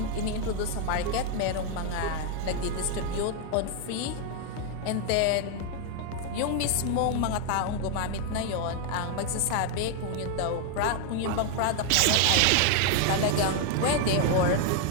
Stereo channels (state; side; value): different; both; correlation 0.00